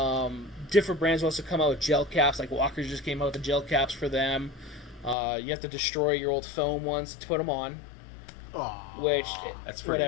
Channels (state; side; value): drops out; right; at 5.2 s